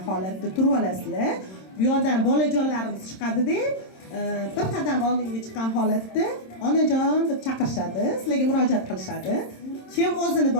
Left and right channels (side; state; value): right; late; 26 ms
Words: holatda turib olasizlar. Bu yoqdan bolajonlarimiz chiqadi-da, bir qadam oldinga chiqqan holatda onajon deb chaqirishadi, sizlarga murojaat qilishadi. Kim o'zini